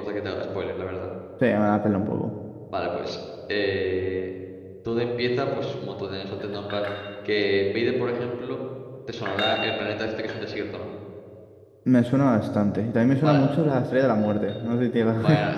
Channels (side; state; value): both; identical; correlation 1.00